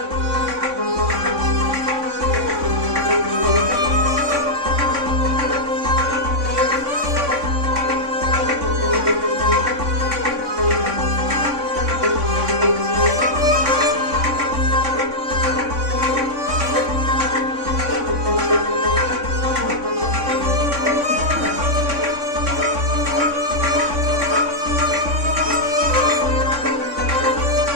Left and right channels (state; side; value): late; left; 3.6 ms